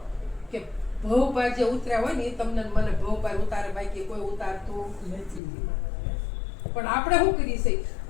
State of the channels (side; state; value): right; drops out; at 5.4 s